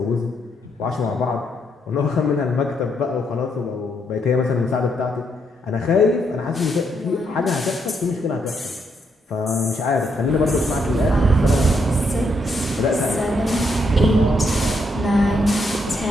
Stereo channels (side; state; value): both; normal; correlation 0.76